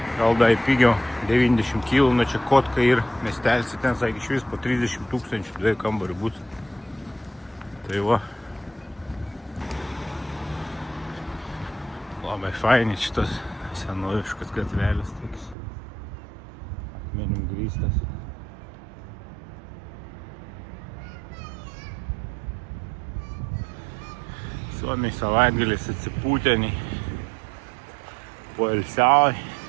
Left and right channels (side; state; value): left; drops out; at 15.6 s